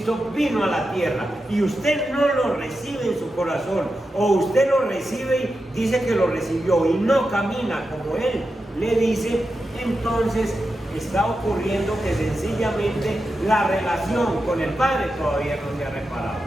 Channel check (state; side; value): normal; both; correlation 0.89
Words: vino a la tierra y usted no lo recibe en su corazón, o usted lo recibe y dice que lo recibió y no camina como Él le dice, entonces está ocurriendo que sencillamente la relación con el Padre todavía no se ha reparado.